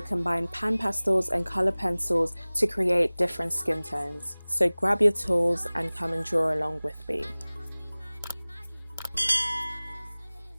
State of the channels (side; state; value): both; inverted; correlation -1.00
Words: combine pan pastels and colour pencils to create different skin tones. So grab your tools and come and draw along with me.